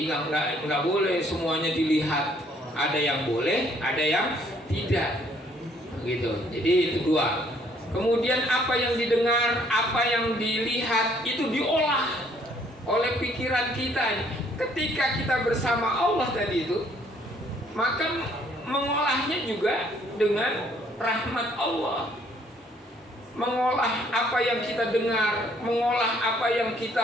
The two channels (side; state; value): both; normal; correlation 0.64